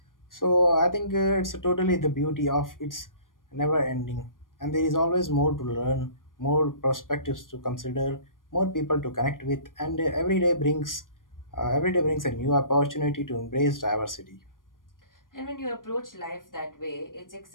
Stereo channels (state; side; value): late; right; 0.90 ms